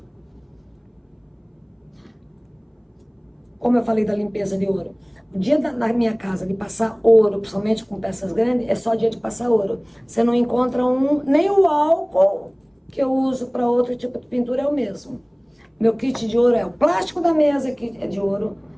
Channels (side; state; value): both; identical; correlation 1.00